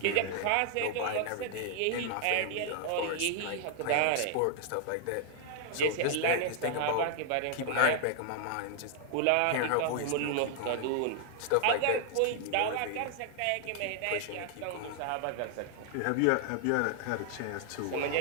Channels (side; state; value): both; different; correlation 0.00